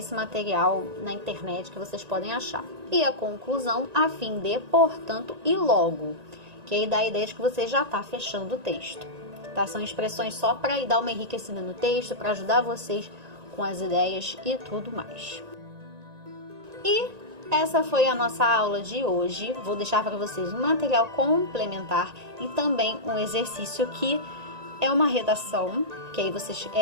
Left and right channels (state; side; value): late; left; 1.9 ms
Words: material na internet que vocês podem achar. E a conclusão, a fim de, portanto e logo. Que aí dá a ideia de que você já está fechando o texto. Tá? São expressões só para dar uma enriquecida no texto, para ajudar vocês com as ideias e tudo mais. E essa foi a nossa aula de hoje. Vou deixar para vocês um material complementar e também um exercício que é uma redação, que aí vocês,